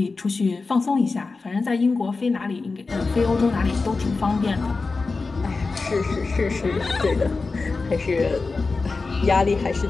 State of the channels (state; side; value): quieter; right; 4.0 dB